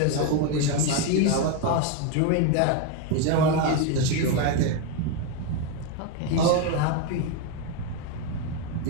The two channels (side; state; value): both; different; correlation 0.02